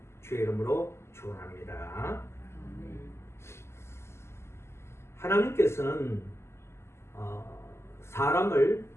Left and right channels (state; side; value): late; right; 0.13 ms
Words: 주의 이름으로 축원합니다. 하나님께서는 사람을